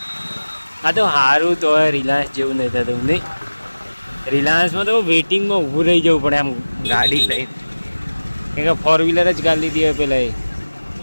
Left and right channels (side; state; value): both; inverted; correlation -1.00